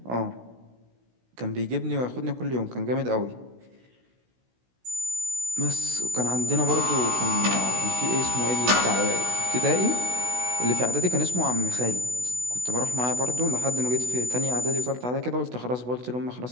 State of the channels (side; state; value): left; late; 16 ms